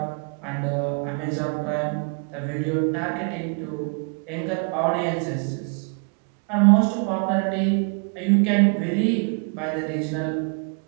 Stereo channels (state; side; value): quieter; left; 39.2 dB